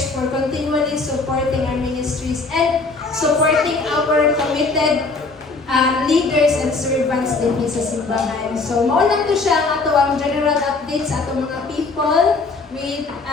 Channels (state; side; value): quieter; right; 3.8 dB